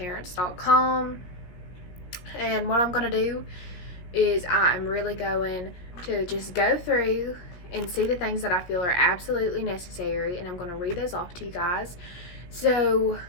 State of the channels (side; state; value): right; late; 17 ms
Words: and what I'm going to do is I'm really going to just go through and see the things that I feel are absolutely necessary, and I'm going to read those off to you guys. So